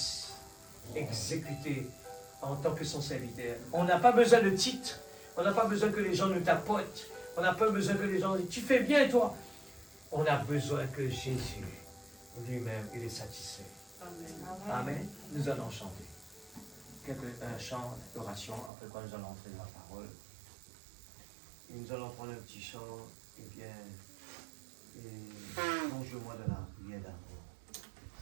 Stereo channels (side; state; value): left; drops out; at 18.7 s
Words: exécuté en tant que son serviteur. On n'a pas besoin de titre, on n'a pas besoin que les gens nous tapotent, on n'a pas besoin que les gens disent « tu fais bien toi ». On a besoin que Jésus lui-même, il est satisfait. Amen. Amen. Nous allons chanter un chant d'oration, après quoi nous allons entrer dans la parole. Et nous allons prendre un petit chant, et bien, plonge-moi dans la prière d'amour.